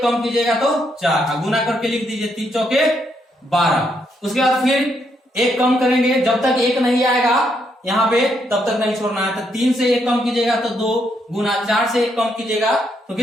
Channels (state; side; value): normal; both; correlation 0.76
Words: कम कीजिएगा तो 4 गुना करके लिख दीजिए 3 चौके 12। उसके बाद फिर 1 कम करेंगे, जब तक 1 नहीं आएगा यहाँ पे तब तक नहीं छोड़ना है। तो 3 से 1 कम कीजिएगा तो 2 गुना, 4 से 1 कम कीजिएगा तो